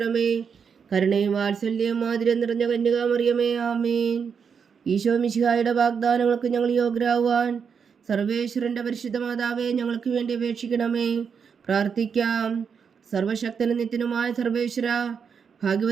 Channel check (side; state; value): left; quieter; 6.5 dB